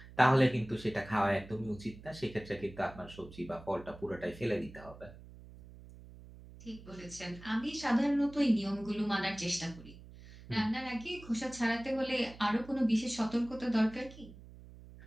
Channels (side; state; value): right; noise; hum, 18 dB below the sound